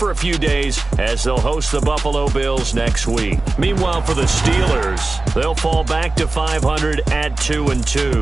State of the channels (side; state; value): left; quieter; 3.2 dB